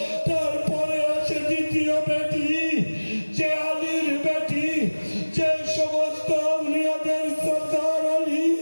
তারপরে আছে দ্বিতীয় বেটি, যে আলীর বেটি, যে সমস্ত আউলিয়াদের সরদার আলী।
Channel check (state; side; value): inverted; both; correlation -1.00